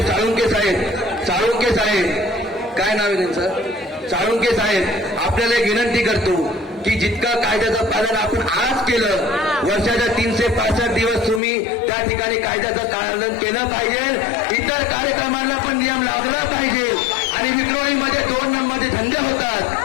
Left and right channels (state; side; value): drops out; right; at 11.4 s